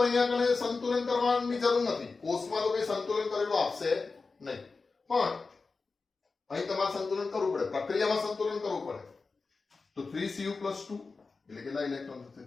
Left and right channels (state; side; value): quieter; right; 4.2 dB